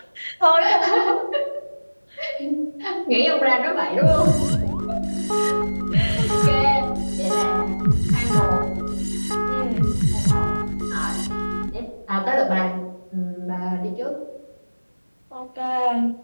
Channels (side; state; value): both; inverted; correlation -1.00